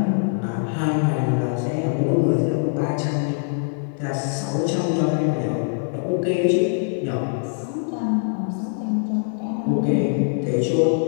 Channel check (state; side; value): silent; right; digital silence